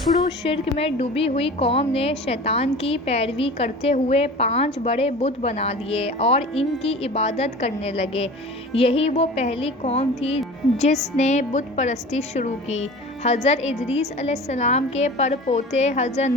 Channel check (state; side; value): normal; both; correlation 0.38